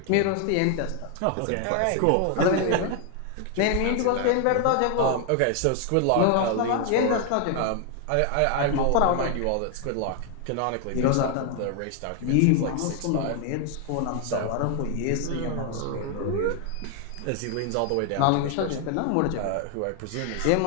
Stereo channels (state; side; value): different; both; correlation 0.00